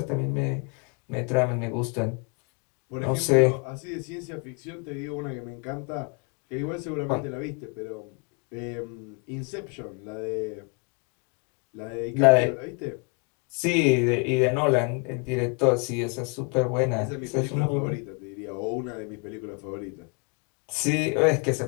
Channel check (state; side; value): quieter; right; 34.9 dB